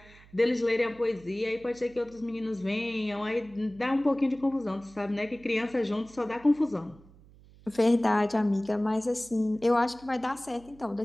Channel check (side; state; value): right; noise; hum, 24 dB below the sound